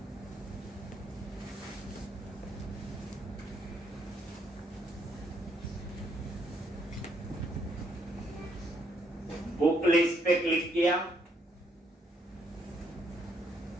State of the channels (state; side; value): normal; both; correlation 0.72